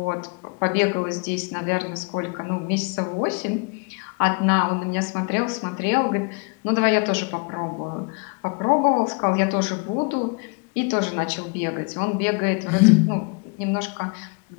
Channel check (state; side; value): quieter; right; 33.4 dB